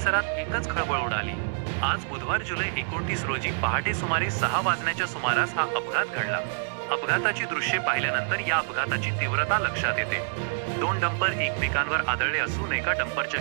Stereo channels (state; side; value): silent; left; 60 dB below the other